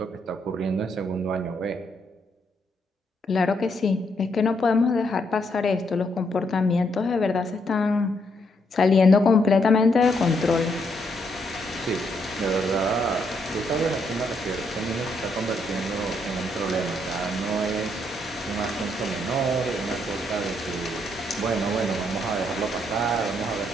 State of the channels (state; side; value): normal; both; correlation 0.75